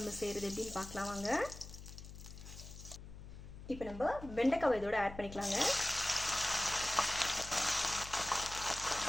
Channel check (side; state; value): left; noise; hum, 13 dB below the sound